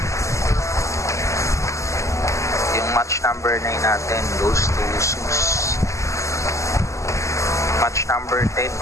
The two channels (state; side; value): late; right; 0.15 ms